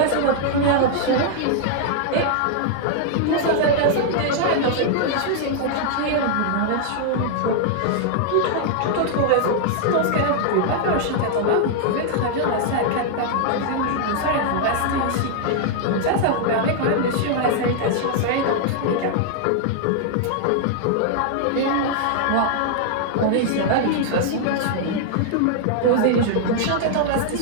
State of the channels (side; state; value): both; different; correlation -0.01